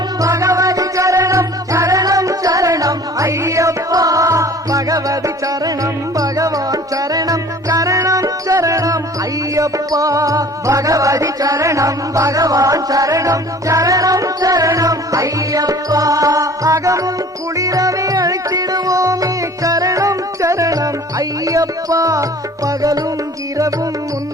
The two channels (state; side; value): normal; both; correlation 0.48